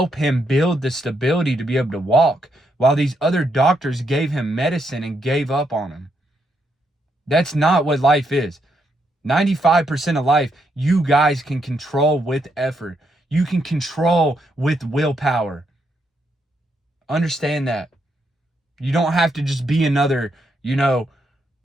him build the stability to be able to walk, while these other doctors gave him medicine and gave up on him. That's not what life is. 95% of life, you guys can control with effort. You can control with willpower. Understand that. You don't have to just be another,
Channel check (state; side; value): normal; both; correlation 0.78